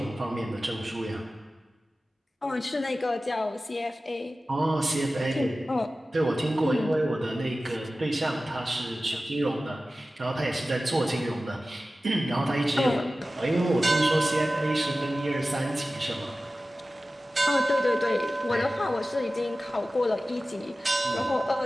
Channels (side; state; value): both; normal; correlation 0.95